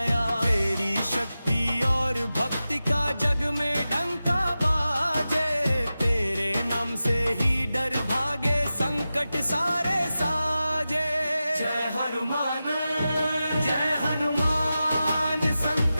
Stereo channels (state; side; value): inverted; both; correlation -0.93